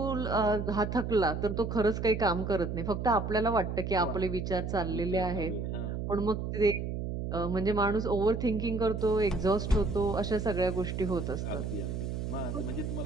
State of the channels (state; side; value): noise; right; hum, 4 dB below the sound